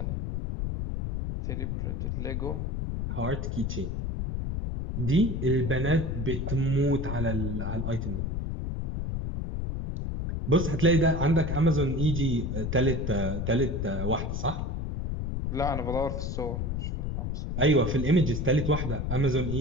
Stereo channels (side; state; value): left; noise; rumble, 2 dB below the sound